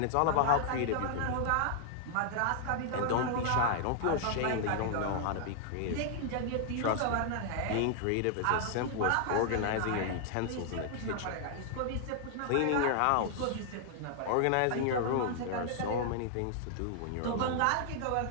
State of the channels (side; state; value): both; different; correlation 0.00